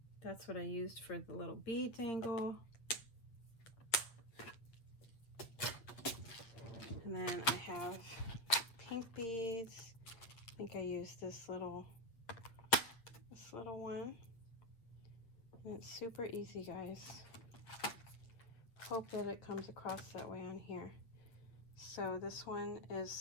That's what I used for the little bead dangle. And then I have pink beads. I think I used this little one. And it's super easy, guys. Hope that it comes across that way on here. So this one is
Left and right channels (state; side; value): late; right; 8.2 ms